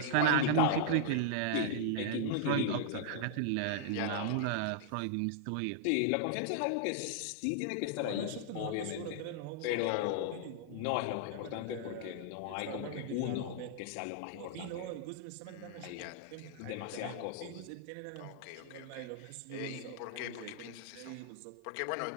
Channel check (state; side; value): different; both; correlation -0.01